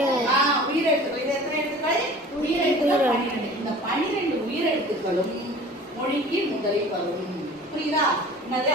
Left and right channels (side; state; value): both; normal; correlation 0.43